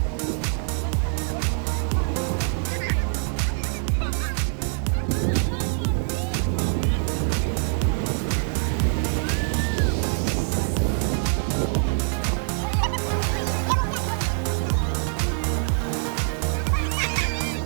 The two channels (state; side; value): silent; left; digital silence